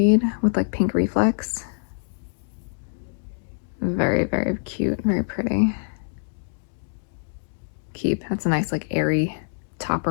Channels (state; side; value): silent; right; digital silence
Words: with like pink reflex. Very, very cute, very pretty. Keep. That's a nice like airy